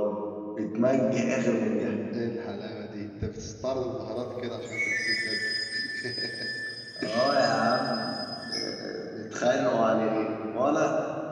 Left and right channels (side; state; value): both; identical; correlation 1.00